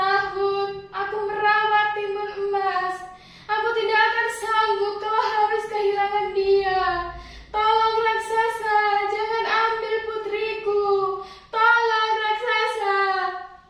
aku merawat timun emas. Aku tidak akan sanggup kalau harus kehilangan dia. Tolong raksasa, jangan ambil putriku. Tolong raksasa.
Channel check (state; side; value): identical; both; correlation 1.00